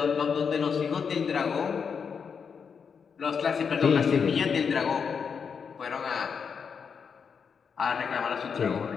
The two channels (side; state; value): right; quieter; 6.3 dB